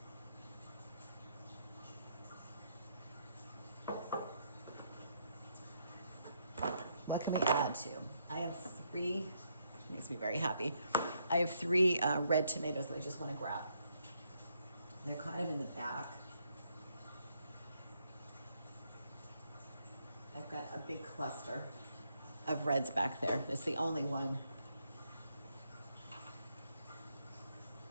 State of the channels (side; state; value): both; inverted; correlation -0.75